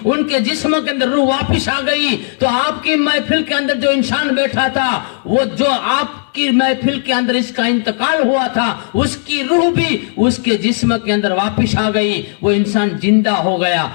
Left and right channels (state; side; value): silent; right; digital silence